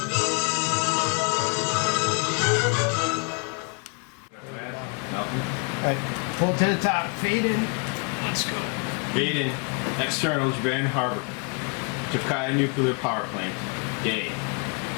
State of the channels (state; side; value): quieter; right; 36.3 dB